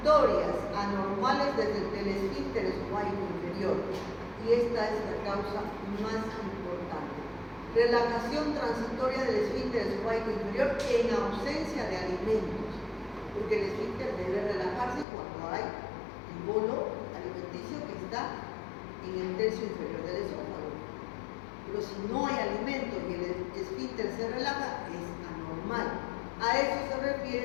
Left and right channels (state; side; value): drops out; right; at 15.1 s